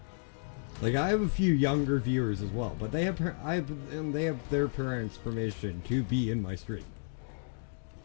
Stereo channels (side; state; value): right; silent; digital silence